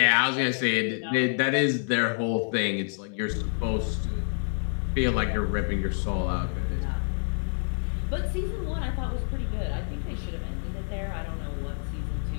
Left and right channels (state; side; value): silent; right; 60 dB below the other